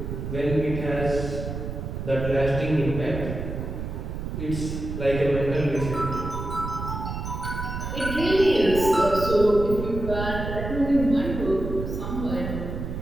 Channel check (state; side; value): noise; right; rumble, 5 dB below the sound